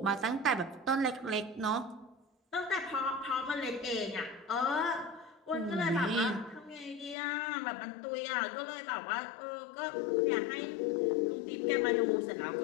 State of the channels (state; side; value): drops out; right; at 7.2 s